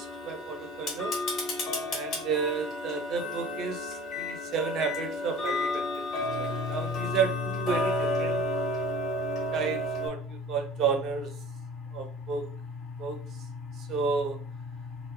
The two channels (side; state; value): both; normal; correlation 0.44